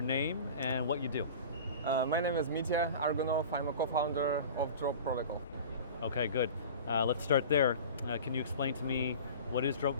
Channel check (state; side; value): inverted; both; correlation -0.38